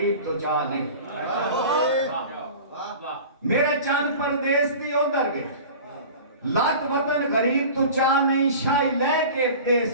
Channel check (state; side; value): inverted; both; correlation -0.38